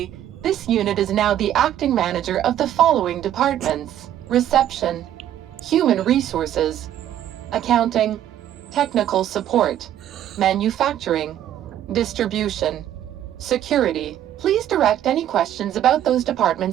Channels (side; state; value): left; quieter; 11.5 dB